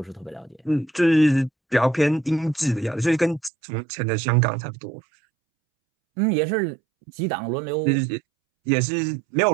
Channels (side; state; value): left; drops out; at 3.5 s